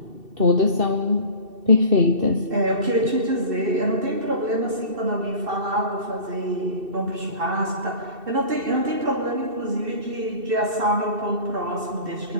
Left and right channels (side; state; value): left; late; 2.7 ms